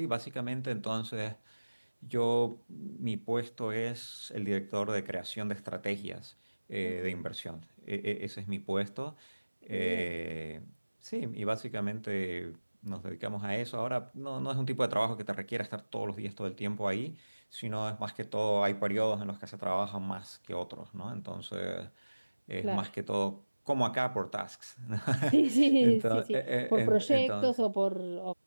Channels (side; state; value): both; inverted; correlation -1.00